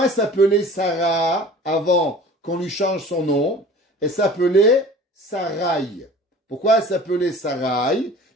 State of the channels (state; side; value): normal; both; correlation 0.43